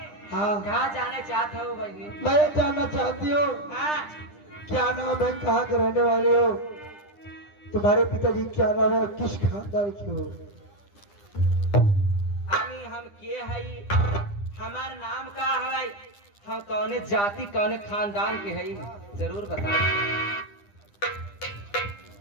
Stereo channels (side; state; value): right; late; 9.9 ms